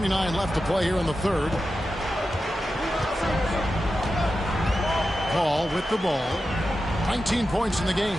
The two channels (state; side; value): normal; both; correlation 0.91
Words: left to play here in the third. Paul with the ball. 19 points in the game.